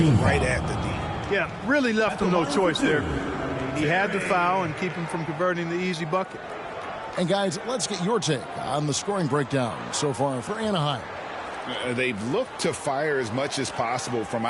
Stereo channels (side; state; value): both; identical; correlation 1.00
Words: right at the D. Yeah, really left him no choice there. He had the foul and keep him from converting the easy bucket. And guys, let's get your take on the scoring breakdown so far for Anaheim. They've looked to fire as much as possible from